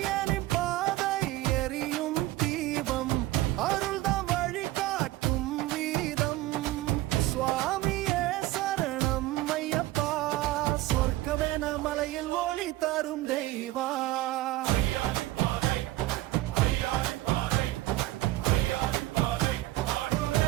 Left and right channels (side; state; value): left; quieter; 16.9 dB